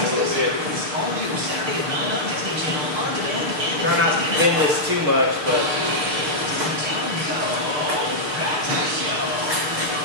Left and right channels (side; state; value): left; late; 6.7 ms